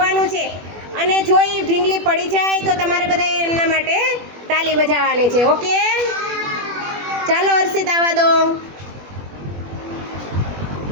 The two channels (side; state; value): left; late; 21 ms